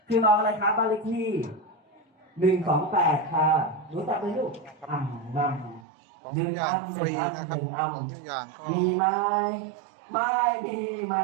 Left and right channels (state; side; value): drops out; left; at 5.9 s